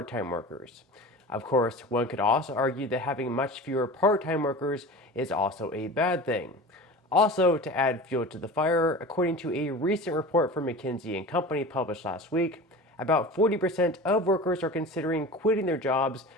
workers. Of course, one could also argue that having much fewer part-time workers is also a bad thing. Also, to add fuel to the fire, according to a recent report from McKinsey & Company published last week, about 40% of workers are considering quitting their jobs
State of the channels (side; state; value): both; normal; correlation 0.35